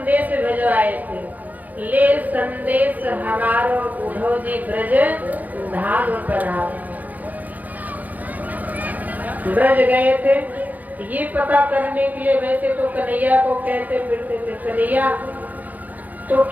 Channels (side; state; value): left; late; 0.081 ms